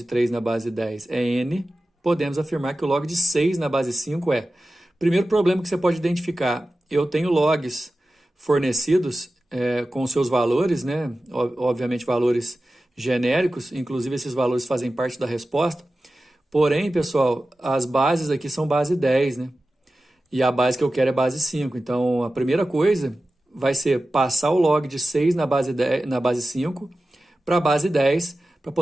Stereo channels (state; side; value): normal; both; correlation 0.95